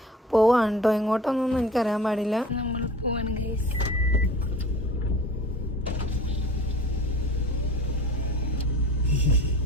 പോവാണ് കേട്ടോ. എങ്ങോട്ടൊന്നും എനിക്കറിയാൻ പാടില്ല. നമ്മൾ പോവാണ് ഗൈസ്.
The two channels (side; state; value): both; normal; correlation 0.41